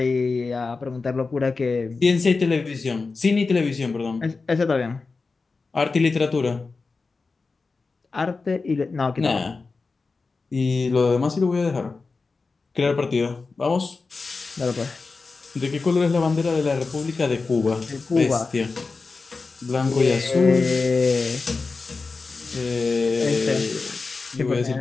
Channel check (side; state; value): right; quieter; 4.1 dB